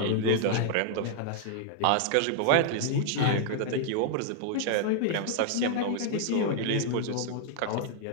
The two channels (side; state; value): both; different; correlation 0.00